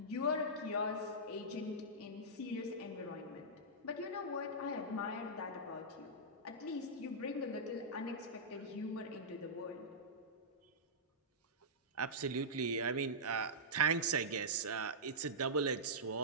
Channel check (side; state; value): both; normal; correlation -0.14